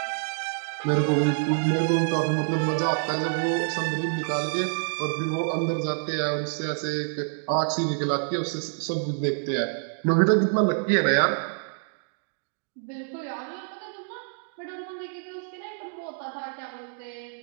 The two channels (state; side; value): silent; left; digital silence